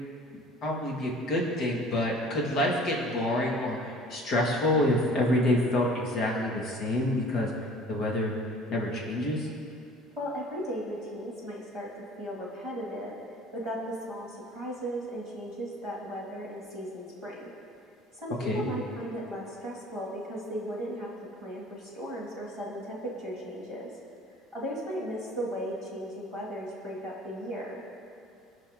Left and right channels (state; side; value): normal; both; correlation 0.48